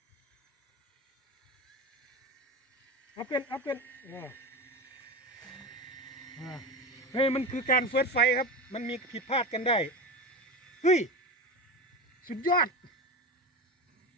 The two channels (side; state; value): both; normal; correlation 0.24